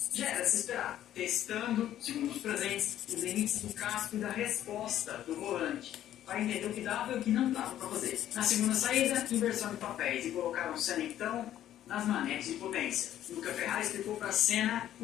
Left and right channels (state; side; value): quieter; right; 11.9 dB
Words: já era se esperar, testando, segundo os presentes, os limites do casco e da resposta do volante, para entender o que dava e o que não dava para fazer. Na segunda saída, inversão de papéis, e colocaram Senna então nas manetes de potência. Luca Ferrari explicou para Senna